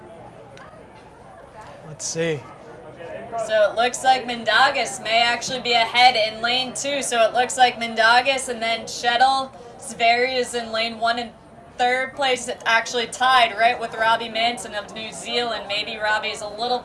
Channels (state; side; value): identical; both; correlation 1.00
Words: Let's see. So it looks like Mindaugas may actually be ahead in lane 2. So it looks like Mindaugas and then Shettle. Sverre is in lane 1 and 3rd place. It's actually tied right with Robbie Manson of New Zealand. Maybe Robbie's a little